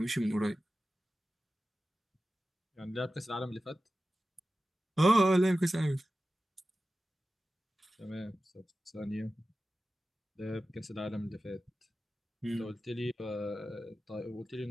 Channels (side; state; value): both; normal; correlation 0.94